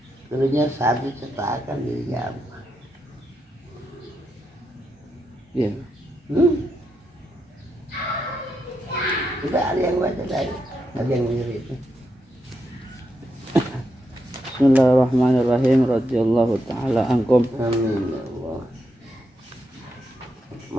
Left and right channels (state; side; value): normal; both; correlation 0.84